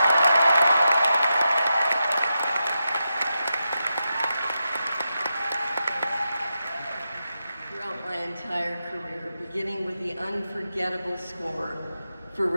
my entire career, beginning with the unforgettable score for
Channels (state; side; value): inverted; both; correlation -0.88